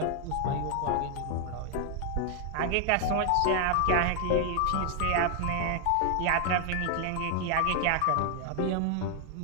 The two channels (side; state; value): both; different; correlation 0.00